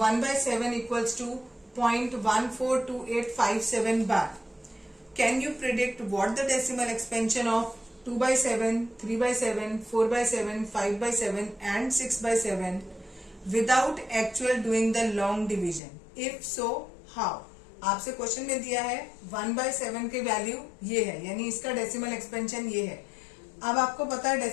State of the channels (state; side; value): drops out; right; at 15.8 s